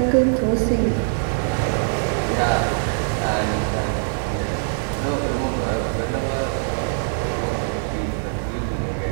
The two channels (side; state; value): left; silent; digital silence